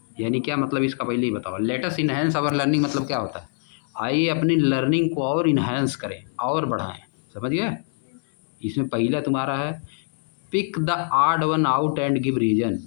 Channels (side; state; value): right; silent; 63 dB below the other